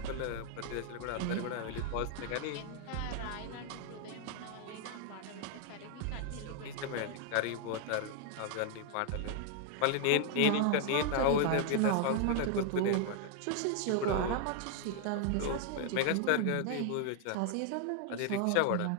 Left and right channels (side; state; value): both; different; correlation 0.00